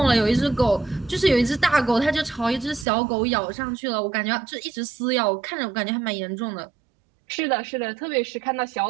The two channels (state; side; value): drops out; left; at 2.9 s